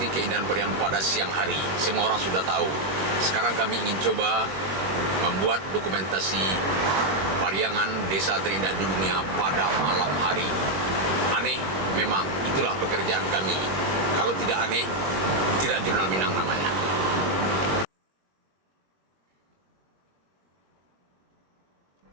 keindahan Pariangan pada siang hari. Semua orang sudah tahu. Sekarang kami ingin coba membuat dokumentasi Pariangan, desa terindah di dunia pada malam hari. Aneh, memang itulah pekerjaan kami. Kalau tidak aneh, tidak Jurnal Minang namanya.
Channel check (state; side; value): late; left; 21 ms